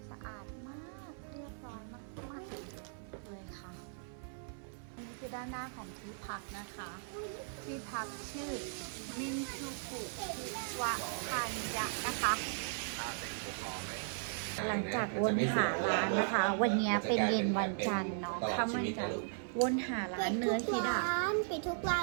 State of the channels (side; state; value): left; silent; 53 dB below the other